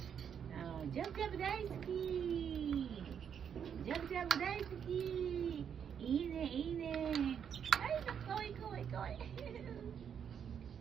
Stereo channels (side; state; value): left; quieter; 7.9 dB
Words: Oh, jab-jab daisuki. Jab-jab daisuki. Ine. Ay, kawai.